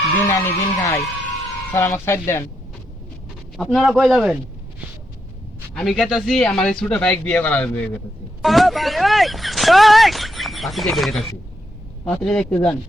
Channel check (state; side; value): normal; both; correlation 0.81